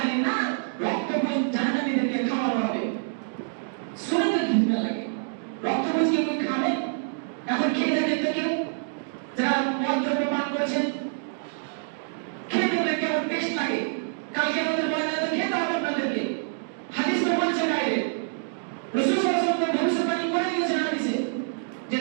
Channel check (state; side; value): silent; left; digital silence